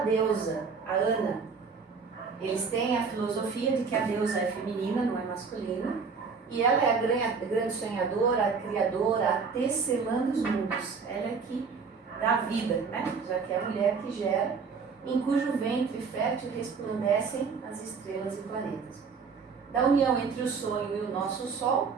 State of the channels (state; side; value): quieter; left; 5.3 dB